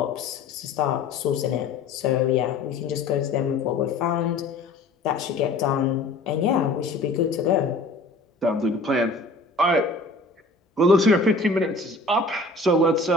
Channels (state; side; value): quieter; right; 3.3 dB